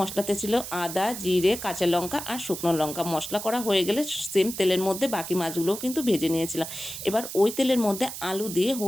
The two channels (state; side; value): noise; right; hiss, 9 dB below the sound